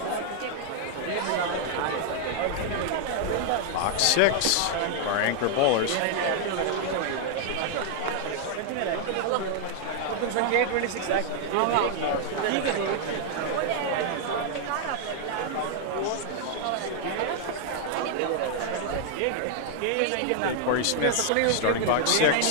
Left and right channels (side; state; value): both; different; correlation -0.01